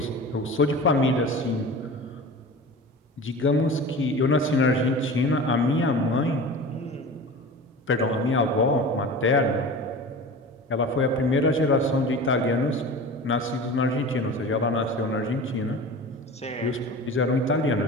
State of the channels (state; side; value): normal; both; correlation 0.35